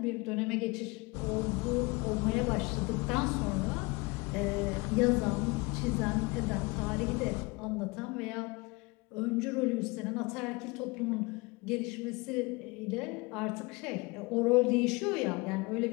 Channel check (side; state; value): right; quieter; 25.9 dB